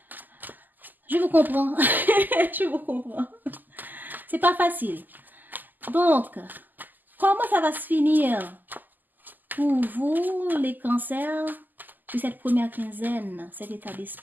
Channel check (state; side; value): late; left; 0.086 ms